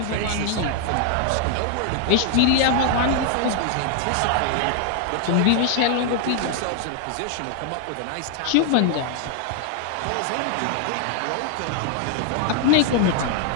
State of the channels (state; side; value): different; both; correlation 0.00